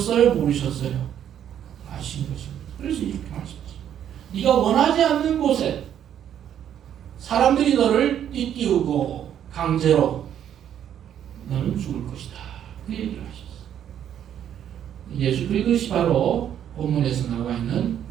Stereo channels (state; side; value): quieter; left; 9.9 dB